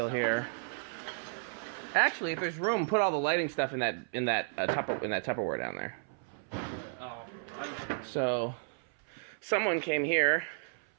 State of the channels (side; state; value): left; silent; 56 dB below the other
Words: here. Actually, if there's room, put all the lighting stuff in that Tupperware down there. So, someone came here